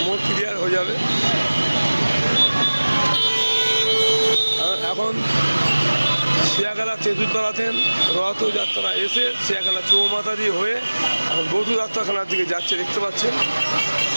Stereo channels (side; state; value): both; inverted; correlation -1.00